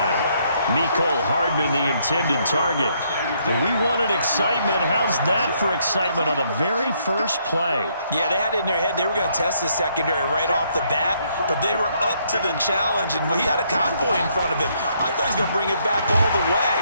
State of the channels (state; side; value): inverted; both; correlation -0.71